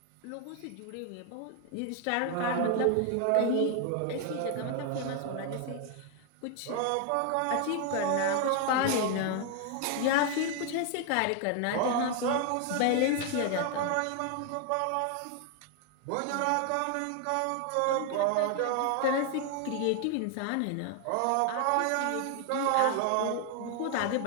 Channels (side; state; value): both; different; correlation 0.00